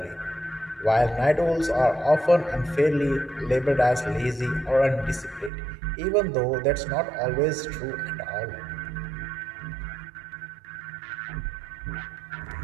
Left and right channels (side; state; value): left; drops out; at 5.5 s